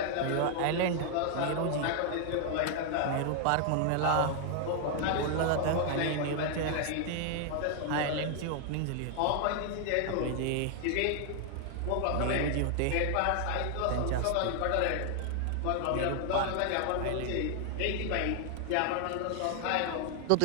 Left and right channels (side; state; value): both; different; correlation 0.00